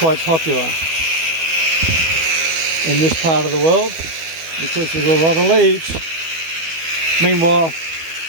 popular in this part of the world because there's a lot of leaves. Meanwhile,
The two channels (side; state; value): left; late; 12 ms